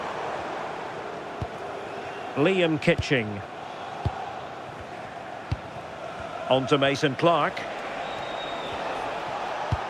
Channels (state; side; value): identical; both; correlation 1.00